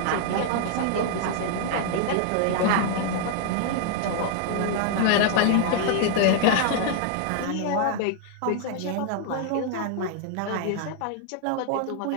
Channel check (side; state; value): both; different; correlation 0.00